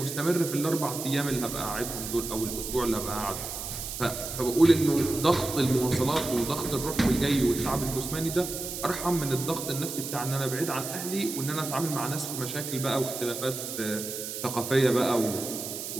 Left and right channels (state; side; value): noise; right; hiss, 7 dB below the sound